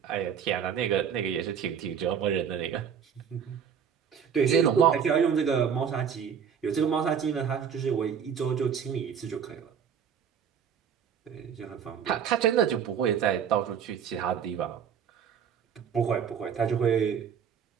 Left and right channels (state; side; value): quieter; left; 7.6 dB